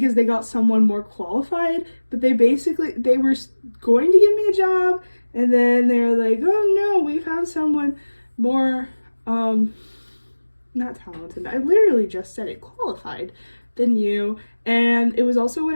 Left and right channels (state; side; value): inverted; both; correlation -1.00